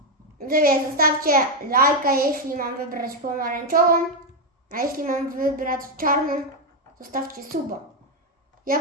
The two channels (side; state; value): both; normal; correlation 0.04